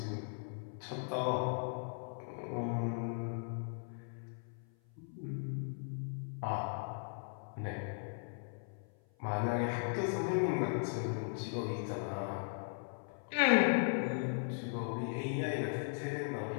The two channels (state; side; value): silent; right; 52 dB below the other